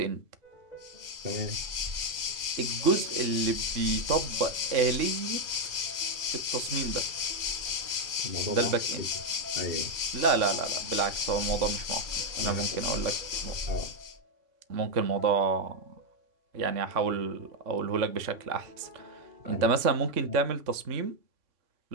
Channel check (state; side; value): late; left; 3.5 ms